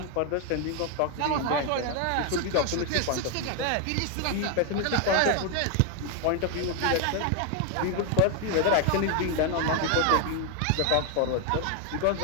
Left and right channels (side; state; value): both; different; correlation 0.01